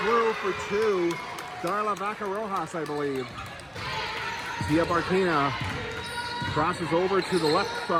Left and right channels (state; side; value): identical; both; correlation 1.00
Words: through for two. Darla Vaca-Rojas, I believe. Zia Barquina crosses over to the left